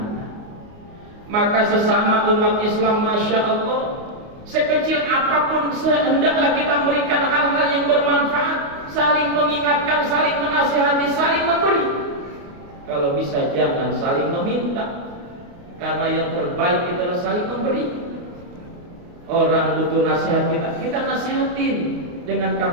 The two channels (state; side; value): late; left; 28 ms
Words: Maka sesama umat Islam, masya Allah, Sekecil apapun hendaklah kita memberikan hal-hal yang bermanfaat, saling mengingatkan, saling menasihati, saling memberi. Kalau bisa jangan saling meminta, karena yang terbaik adalah saling memberi. Orang butuh nasihat kita nasihatin dengan